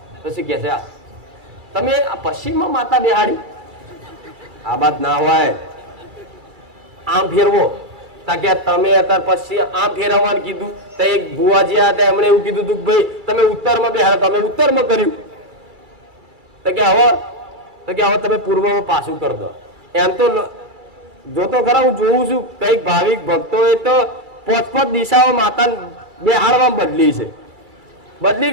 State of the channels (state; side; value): late; left; 2.3 ms